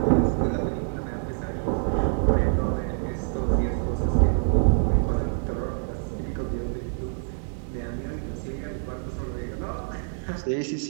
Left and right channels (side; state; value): left; silent; digital silence